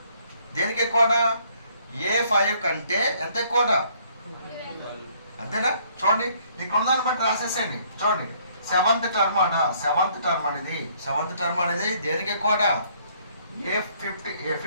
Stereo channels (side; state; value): both; inverted; correlation -0.64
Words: దేనికి ఎక్కువట, A5 కంటే ఎంత ఎక్కువట, అంతేనా. చూడండి ఇక్కడ ఉందని బట్టి రాసేసేయండి. చూడండి సెవెంత్ టర్మ్ అట, సెవెంత్ టర్మ్ అనేది దేనికి ఎక్కువట,